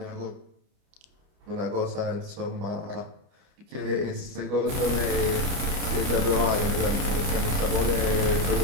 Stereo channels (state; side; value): late; left; 29 ms